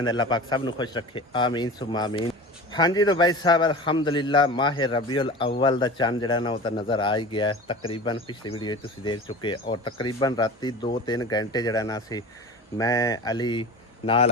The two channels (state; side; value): normal; both; correlation 0.34